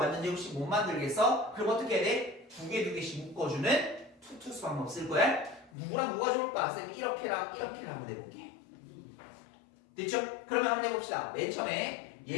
제곱식 못 만들겠어? 그럼 어떻게 해야 돼? 2개씩 묶어주는 투투수 방법 쓸 거야. 누구랑 누가 좋을까? 쌤이 이렇게랑 하면 해볼게. 됐죠? 그러면 한번 해봅시다. 맨 처음에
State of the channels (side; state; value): right; drops out; at 5.7 s